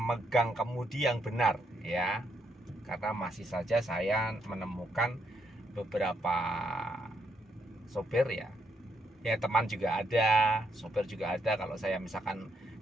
kemudi yang benar, ya. Karena masih saja saya menemukan beberapa sopir, ya teman juga ada, sopir juga ada. Kalau saya misalkan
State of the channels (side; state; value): both; normal; correlation 0.76